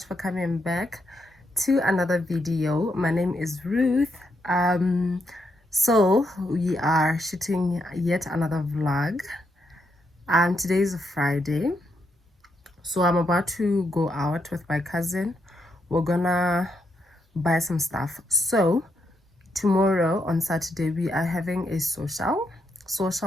for coming back to another video. My name is Ruth. So we are shooting yet another vlog. Today is a Friday, so I'm about to go out with my cousin. We're gonna buy some stuff. So tomorrow on Saturday we are having a social.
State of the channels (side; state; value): both; normal; correlation 0.79